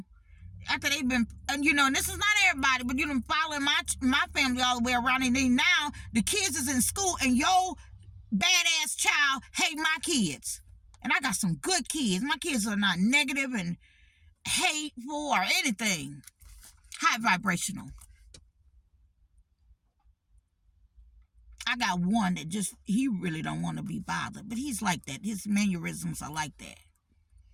after they've been, and this is not everybody, but you've been following my family all the way around, and then now the kids is in school, and your badass child hate my kids. And I got some good kids. My kids are not negative and hateful or anything. High vibrational. I got one that he really don't want to be bothered, but he's like that. His mannerisms are like that.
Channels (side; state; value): both; identical; correlation 1.00